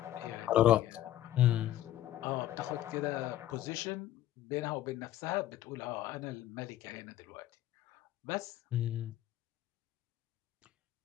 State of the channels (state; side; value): quieter; right; 13.3 dB